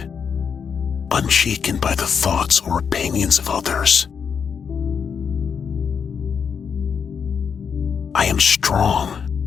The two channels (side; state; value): right; quieter; 6.7 dB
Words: unshaken by the thoughts or opinions of others. I am strong,